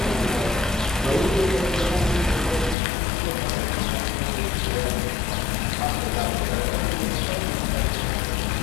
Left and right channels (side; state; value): right; drops out; at 2.8 s